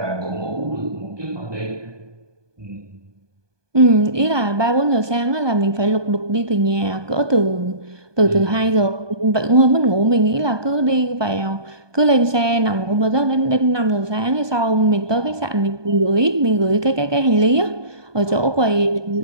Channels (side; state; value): left; late; 1.2 ms